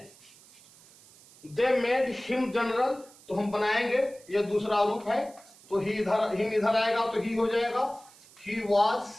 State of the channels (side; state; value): right; noise; hiss, 24 dB below the sound